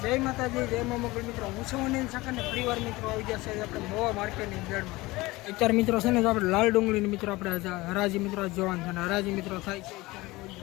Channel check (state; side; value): quieter; right; 20.7 dB